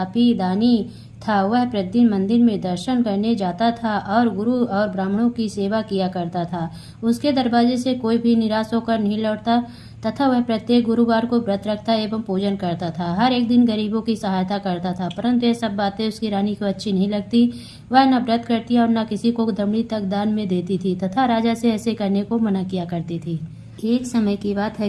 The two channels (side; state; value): both; identical; correlation 1.00